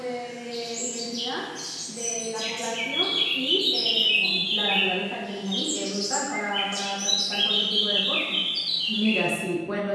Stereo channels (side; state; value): both; identical; correlation 1.00